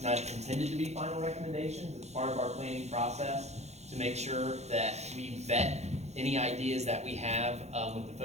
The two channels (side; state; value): left; late; 0.32 ms